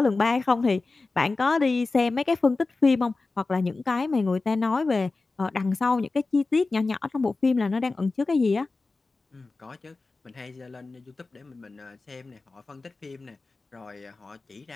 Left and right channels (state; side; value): quieter; right; 3.6 dB